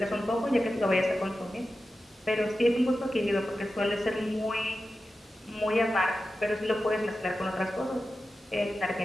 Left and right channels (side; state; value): both; normal; correlation 0.92